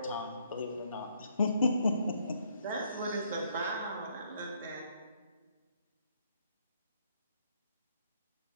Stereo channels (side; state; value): both; inverted; correlation -0.69